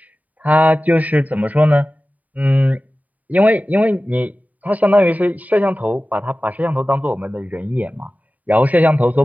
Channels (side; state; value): left; late; 0.074 ms